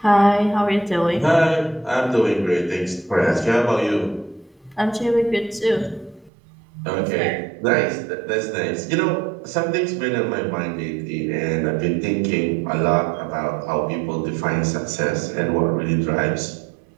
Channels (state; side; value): drops out; left; at 6.3 s